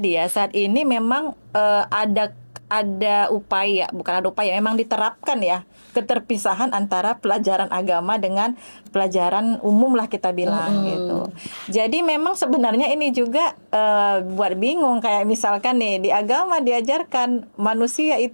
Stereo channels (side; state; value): both; inverted; correlation -1.00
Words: ya. Saat ini memang ada upaya, bukan ada upaya, memang diterapkan ya keterpisahan antara pelajaran agama dengan pelajaran umum lah kita bilang gitu. Jadi memang sebenarnya ini juga buat bingung, kayak misalkan nih di agama diajarkan manusia